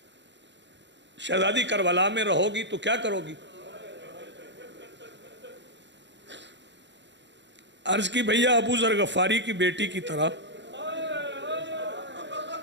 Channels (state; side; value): late; left; 0.52 ms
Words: شہزادی کربلا میں رہو گی تو کیا کرو گی؟ عرض کی بھیا ابو ذر غفاری کی بیٹی کی طرح